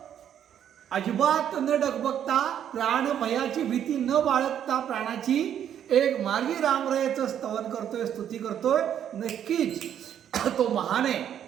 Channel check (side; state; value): left; quieter; 9.7 dB